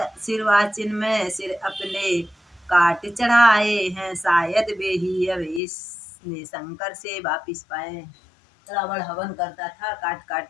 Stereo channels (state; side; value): drops out; right; at 5.6 s